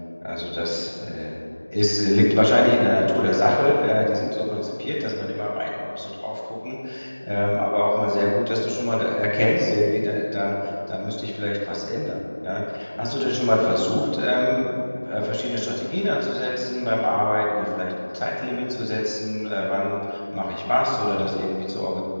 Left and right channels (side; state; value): both; inverted; correlation -1.00